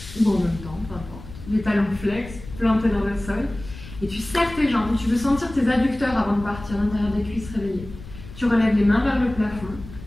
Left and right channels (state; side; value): noise; left; rumble, 15 dB below the sound